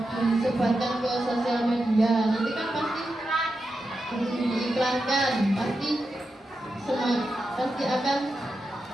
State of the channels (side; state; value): both; normal; correlation 0.89